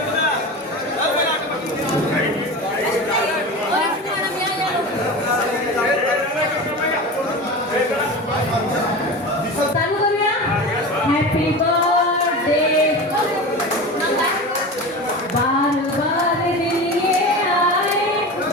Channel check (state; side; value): normal; both; correlation 0.29